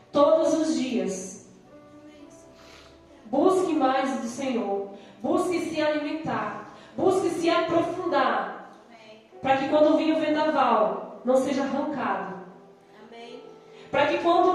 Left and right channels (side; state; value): both; identical; correlation 1.00